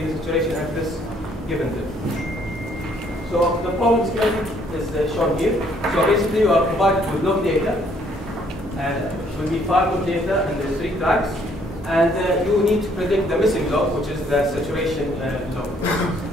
the saturation at this given depth. So the problem schematic is shown here. So basically, you are provided with log data. It will be 5 log data, and there's 3 tracks. And you need to predict the missing log, which is the saturation log.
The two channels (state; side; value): normal; both; correlation 0.65